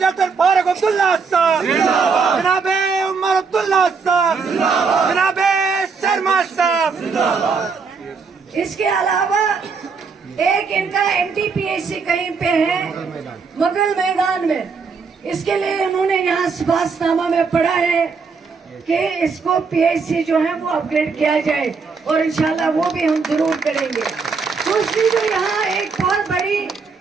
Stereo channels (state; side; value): quieter; left; 5.1 dB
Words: फारूक अब्दुल्ला साहब, जनाबे उमर अब्दुल्ला साहब, जनाबे शर्मा साहब। इसके अलावा एक इनका एमटीपीएससी कहीं पे है मुगल मैदान में। इसके लिए उन्होंने यहाँ सिफारिशनामा में पढ़ा है कि इसको पीएचसी जो है वो अपग्रेड किया जाए, और इंशाल्लाह वो भी हम जरूर करेंगे। दूसरी जो यहाँ एक बहुत बड़ी